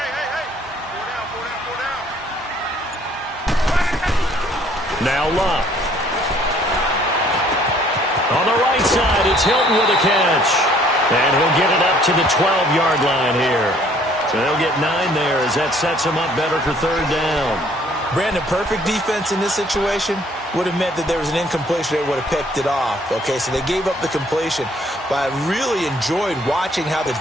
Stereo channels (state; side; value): normal; both; correlation 0.60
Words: Now Luck. On the right side, it's Hilton with a catch. And he'll get it up to the 12-yard line here. So they'll get 9 there as that sets him up better for 3rd down. Brandon, perfect defense in this situation would have meant that there was an incompletion. They would have picked it off. Okay, so they gave up the completion. But I really enjoyed watching how the